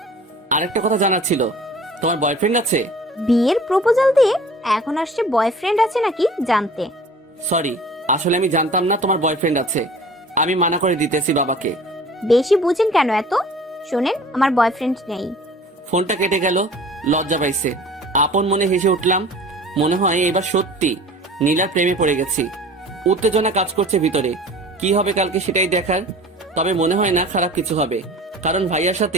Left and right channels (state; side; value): normal; both; correlation 0.44